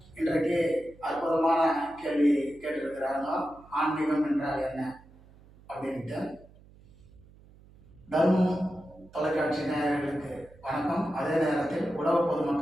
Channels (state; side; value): noise; right; hum, 25 dB below the sound